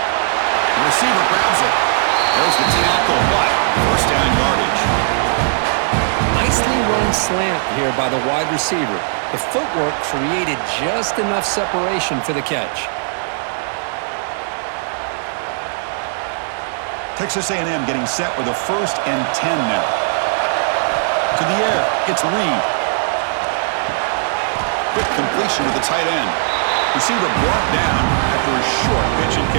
The receiver grabs it. There's the tackle, but first down yardage. Nicely run slant here by the wide receiver. The footwork created just enough separation for the catch. Texas A&M getting set with a 1st and 10 now. To the air, it's Reed. Quick completion to the tight end. Receiver brought down after a short pitch and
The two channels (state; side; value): silent; left; 62 dB below the other